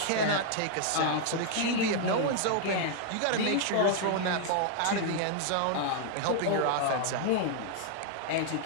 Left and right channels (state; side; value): different; both; correlation 0.00